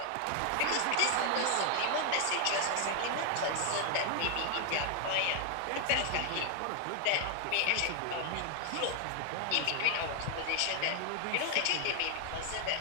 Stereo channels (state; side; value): different; both; correlation 0.00